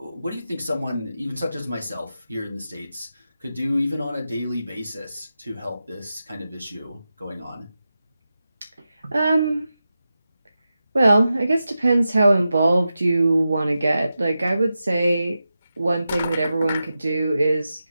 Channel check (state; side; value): inverted; both; correlation -0.91